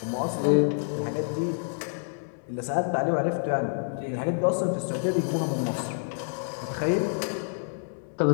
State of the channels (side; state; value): right; silent; 60 dB below the other